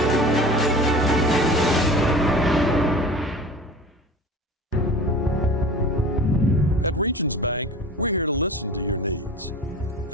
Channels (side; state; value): both; normal; correlation 0.37